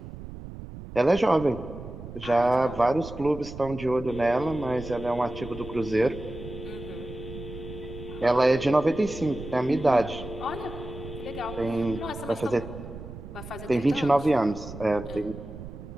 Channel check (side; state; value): right; noise; rumble, 12 dB below the sound